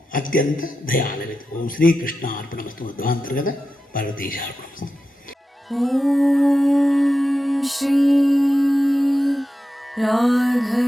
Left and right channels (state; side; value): normal; both; correlation 0.91